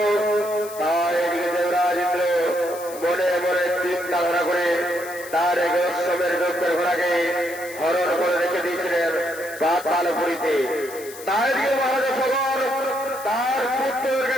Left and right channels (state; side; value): noise; left; hiss, 15 dB below the sound